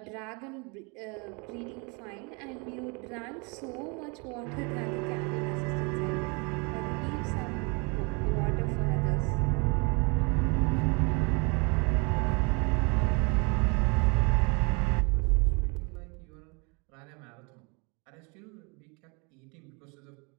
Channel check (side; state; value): left; quieter; 31.5 dB